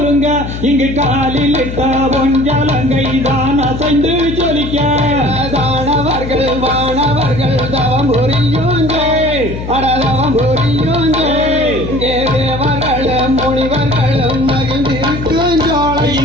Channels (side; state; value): left; noise; hum, 7 dB below the sound